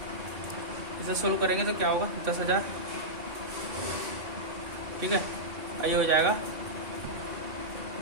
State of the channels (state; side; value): late; left; 2.6 ms